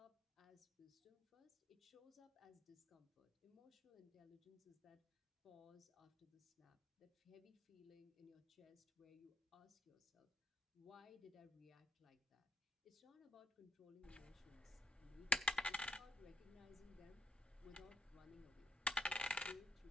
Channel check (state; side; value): normal; both; correlation 0.72